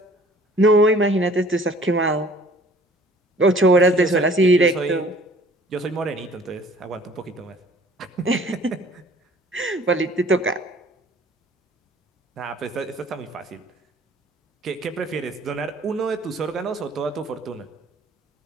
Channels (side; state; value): both; normal; correlation 0.53